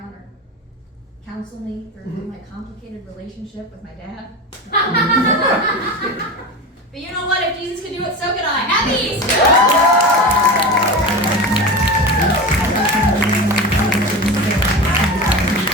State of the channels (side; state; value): both; normal; correlation 0.26